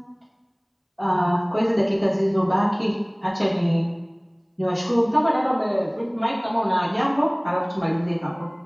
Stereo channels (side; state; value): both; identical; correlation 1.00